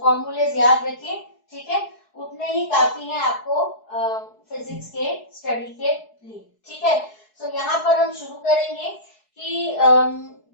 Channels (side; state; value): right; late; 4.7 ms